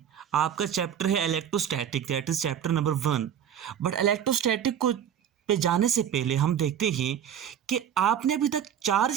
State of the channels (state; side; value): quieter; left; 9.2 dB